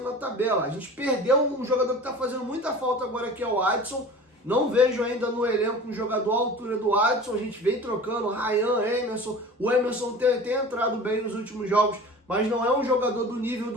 na tabela. A gente perdeu um jogador que está fazendo muita falta agora, que é o Adson. Não vejo ainda no elenco um jogador à altura do Adson. A gente vem trocando Ryan, Emerson. O Emerson tem entrado bem nos últimos jogos, mas não é um jogador do nível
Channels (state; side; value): normal; both; correlation 0.39